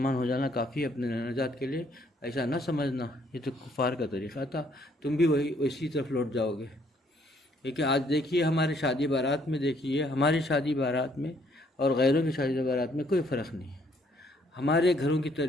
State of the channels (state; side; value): normal; both; correlation 0.66